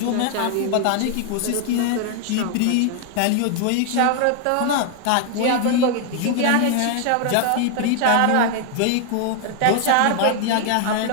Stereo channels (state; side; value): different; both; correlation 0.00